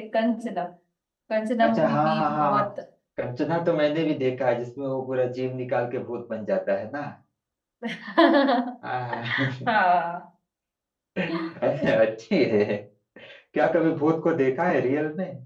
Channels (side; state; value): both; identical; correlation 1.00